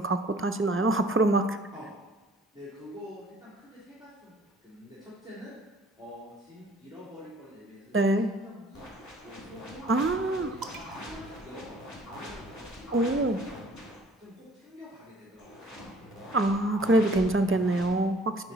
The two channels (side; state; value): both; normal; correlation 0.55